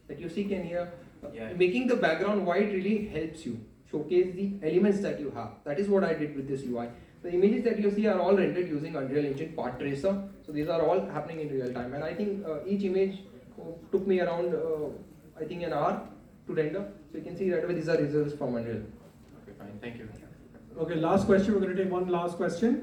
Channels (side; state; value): both; identical; correlation 1.00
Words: that you see can here. Yeah. Making the background white really helps you showcase the elements that you have. That is what I did with this UI. The images that you see are all rendered using Unreal Engine Path Tracer. So these are all happening in real time. And I think each image took me around, I think an hour to render. So you can see right away these are results from Unreal. Okay, fine. Thank you. Okay, last question. We're going to take one last